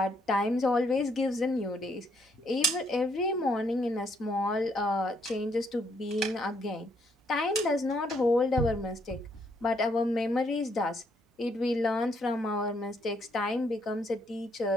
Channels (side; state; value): both; normal; correlation 0.71